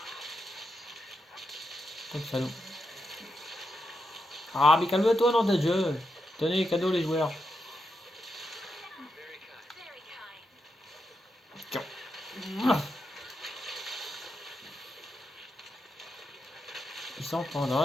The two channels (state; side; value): normal; both; correlation 0.85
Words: Comme salaud. Ah mais calme-toi dans ta jeu. Tenez, cadeau les joueurs. Tiens. Il s'en prend dans